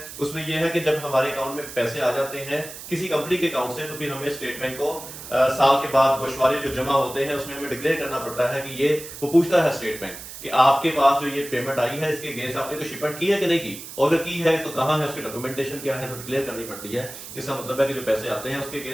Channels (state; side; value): noise; right; hiss, 12 dB below the sound